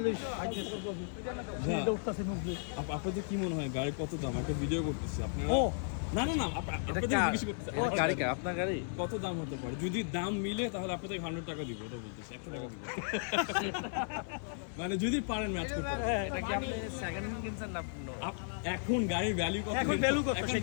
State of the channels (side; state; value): right; silent; 54 dB below the other